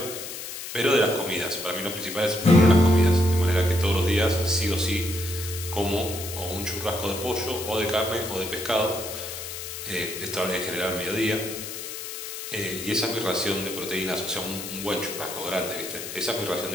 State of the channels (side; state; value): left; noise; hiss, 8 dB below the sound